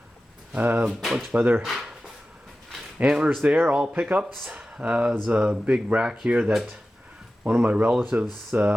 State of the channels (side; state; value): both; normal; correlation 0.95